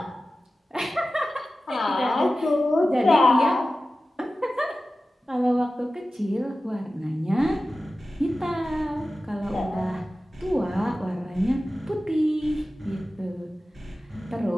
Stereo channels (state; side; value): normal; both; correlation 0.95